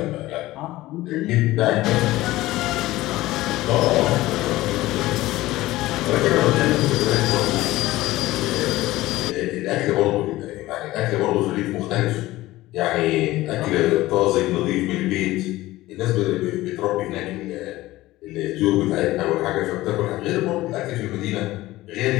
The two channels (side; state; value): right; quieter; 17.4 dB